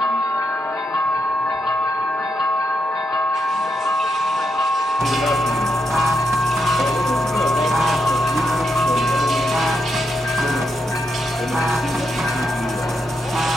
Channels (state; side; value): normal; both; correlation 0.82